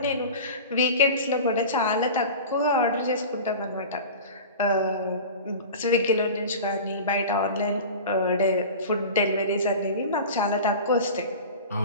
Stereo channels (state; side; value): inverted; both; correlation -0.34